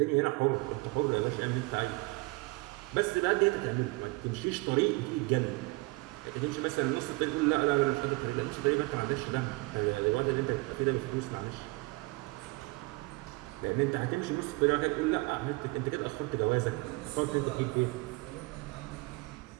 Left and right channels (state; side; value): quieter; left; 24.5 dB